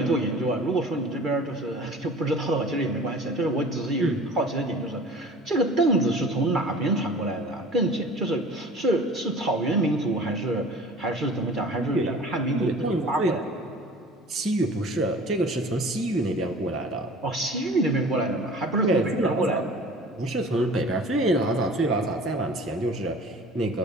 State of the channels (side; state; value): both; normal; correlation 0.43